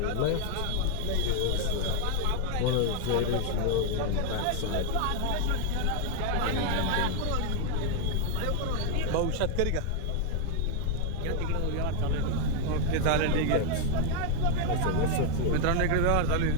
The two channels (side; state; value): both; different; correlation 0.00